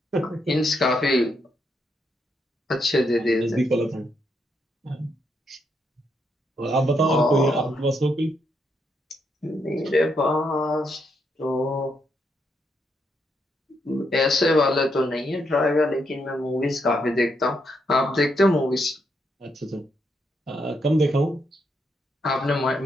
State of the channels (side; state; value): both; normal; correlation 0.78